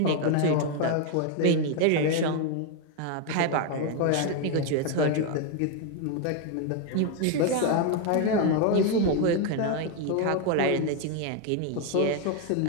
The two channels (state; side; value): different; both; correlation 0.01